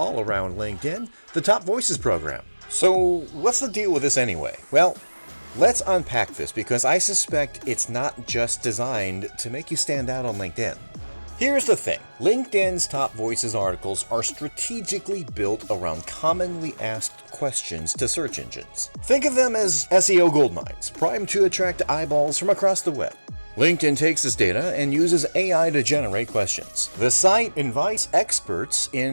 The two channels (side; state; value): both; inverted; correlation -1.00